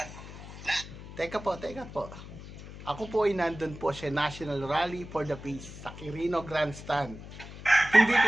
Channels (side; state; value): left; noise; hum, 14 dB below the sound